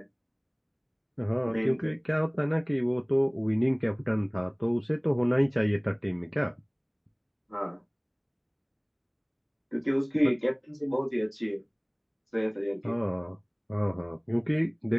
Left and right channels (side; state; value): both; identical; correlation 1.00